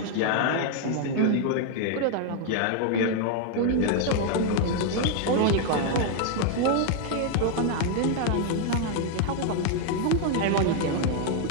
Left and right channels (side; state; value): both; different; correlation 0.00